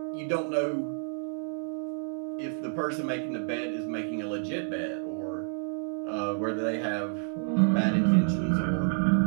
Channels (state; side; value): silent; left; 58 dB below the other